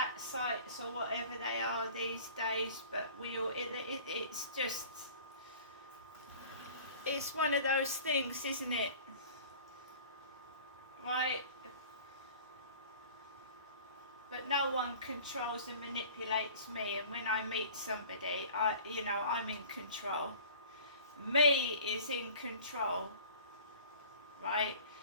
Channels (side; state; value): both; inverted; correlation -0.45